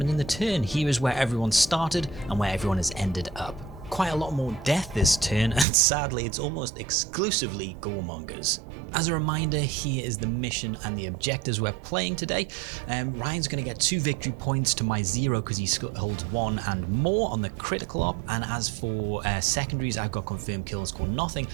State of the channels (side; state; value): left; drops out; at 5.7 s